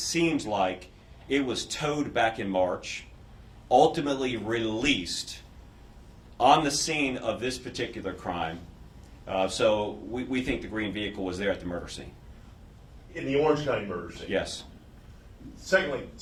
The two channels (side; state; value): both; identical; correlation 1.00